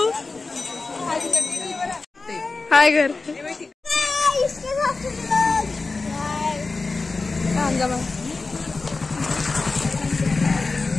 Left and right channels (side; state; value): right; quieter; 3.8 dB